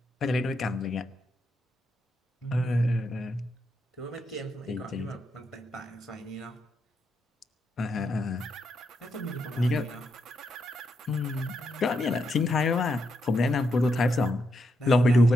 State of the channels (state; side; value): normal; both; correlation 0.82